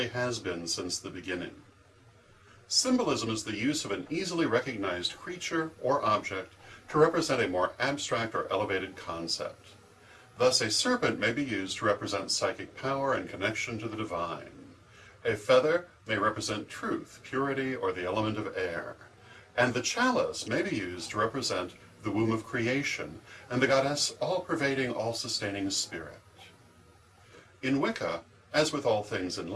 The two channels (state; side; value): identical; both; correlation 1.00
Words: has been since the beginning. Symbolism is the use of an easily recognized creature or object to represent a more abstract or elevated concept. Thus, a serpent may be used to represent psychic power and connection to the divine. A feather may represent truth, purity, or the element of air. And the chalice may be used to represent the womb of creation and the goddess all-pervading, all-sustaining spirit. In Wicca, as with all things in